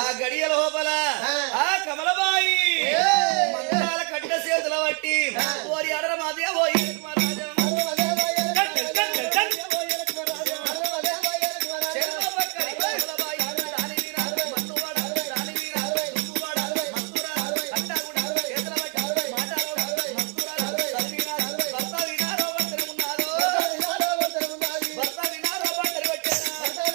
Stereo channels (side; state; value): left; quieter; 36.2 dB